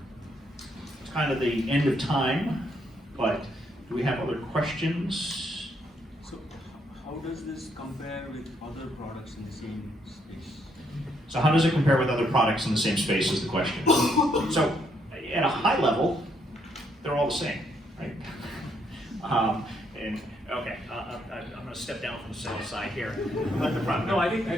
it's kind of the end of time, but do we have other questions? So how does this compare with other products in the same space? So how does it compare with other products in the same space is the question. So at a high level, they're all the same, right? And okay, I'm gonna step down from the sales side here. Let the product. No, I think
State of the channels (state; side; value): normal; both; correlation 0.73